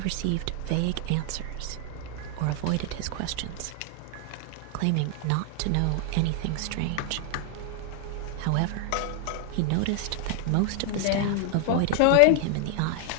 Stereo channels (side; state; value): both; different; correlation 0.00